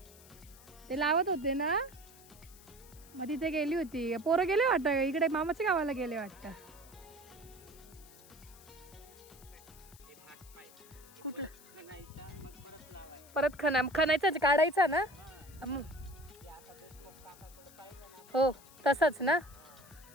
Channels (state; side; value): noise; left; hiss, 22 dB below the sound